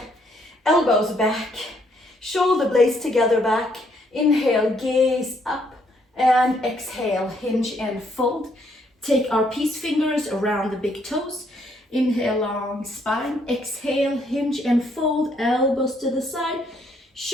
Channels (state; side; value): normal; both; correlation 0.70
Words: elbows back. Shoulder blades together back. Inhale, gaze up. And exhale, hinge and fold. Take our peace fingers around the big toes. Inhale, long spine. Exhale, hinge and fold. Elbows to the side.